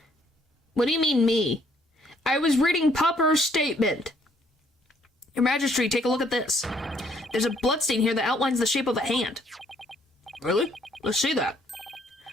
What do you mean, me? I was reading Pupper's statement. Your Majesty, take a look at this. There's a bloodstain here that outlines the shape of a hand. Really? Let's see that.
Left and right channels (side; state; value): both; normal; correlation 0.66